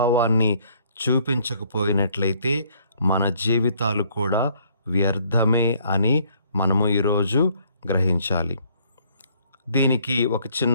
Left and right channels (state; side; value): inverted; both; correlation -0.64